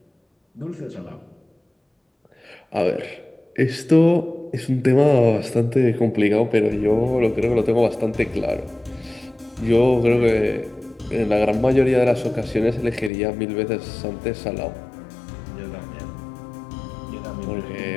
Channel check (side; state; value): right; drops out; at 13.1 s